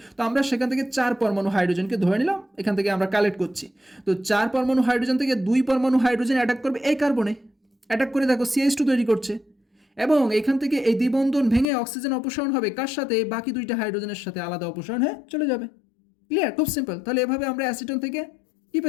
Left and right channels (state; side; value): drops out; right; at 11.7 s